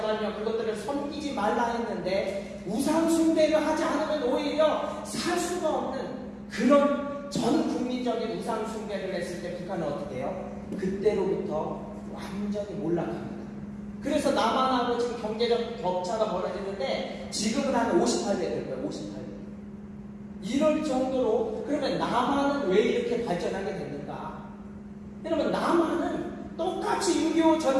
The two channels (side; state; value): both; identical; correlation 1.00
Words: 그것들을 섬기지 말라 했는데 우상 숭배를 하지 않으면 오히려 살 수가 없는 그런 전 국민적인 우상 숭배를 했을 때 북한은 어떻게 해요? 그때로부터 완전히 몰락합니다. 그래서 남한하고 지금 경제적 격차가 벌어지는데 지금은 한 58배 될 거예요. 58배. 이럴 정도로 그러면 남한은 왜 이렇게 발전하게 됐는가? 여러분 남한은 똑같이 똑같이 6.25